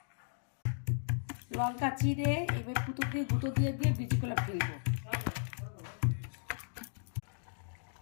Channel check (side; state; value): right; silent; digital silence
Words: লঙ্কা চিড়ে এবার পুতো দিয়ে গুঁতো দিয়ে দিয়ে বীজগুলো ফেলবো।